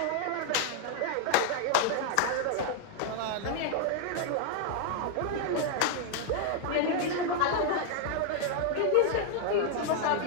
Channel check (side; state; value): both; different; correlation 0.00